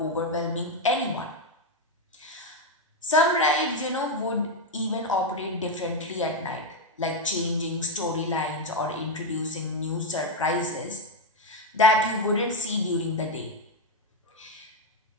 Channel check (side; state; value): both; normal; correlation 0.05